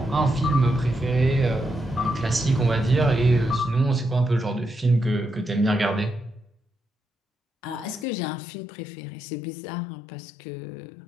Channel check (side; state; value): right; drops out; at 8.1 s